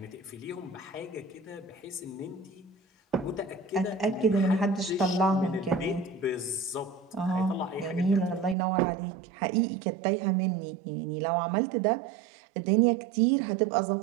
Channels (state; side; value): drops out; left; at 8.6 s